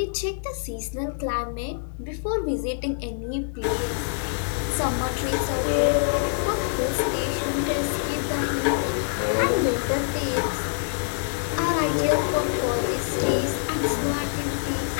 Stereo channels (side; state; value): right; silent; digital silence